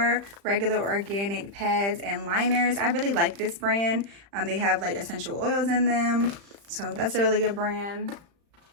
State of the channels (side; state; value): left; late; 35 ms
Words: regular organic pads and liners. I really like this brand. They have like essential oils in them, so that's a really good brand.